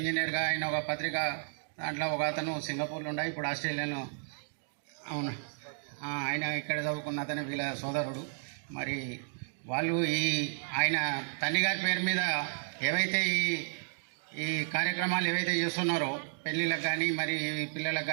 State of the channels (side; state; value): left; silent; digital silence